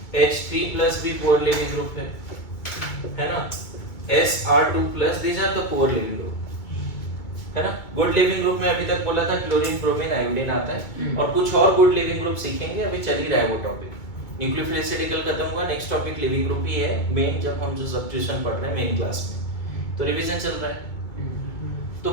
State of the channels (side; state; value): right; late; 2.2 ms